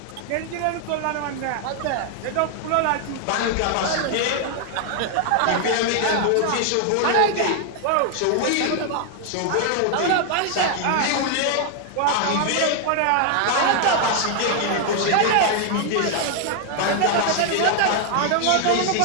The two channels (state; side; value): different; both; correlation 0.00